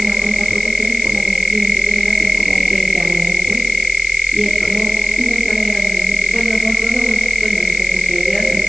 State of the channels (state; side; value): noise; left; hiss, 11 dB below the sound